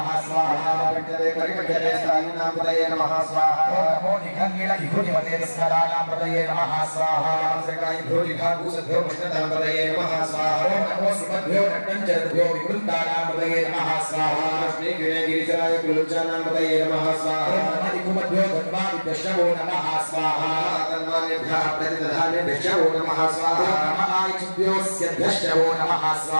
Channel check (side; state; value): both; inverted; correlation -1.00